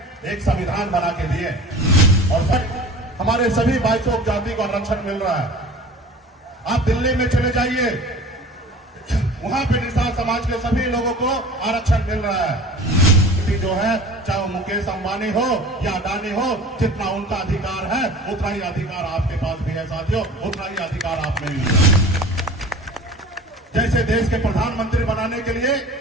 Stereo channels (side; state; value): both; normal; correlation 0.41